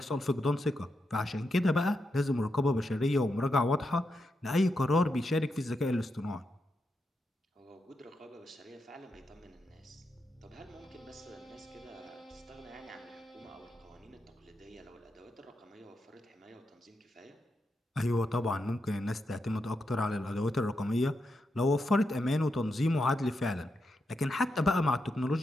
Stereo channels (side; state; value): both; normal; correlation 0.85